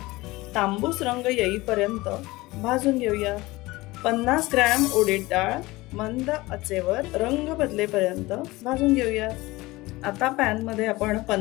तांबूस रंग येईपर्यंत भाजून घेऊया। 50 ग्रॅम उडीद डाळ मंद आचेवर रंग बदलेपर्यंत भाजून घेऊया। आता पॅन मध्ये आपण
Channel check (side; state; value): right; quieter; 20.5 dB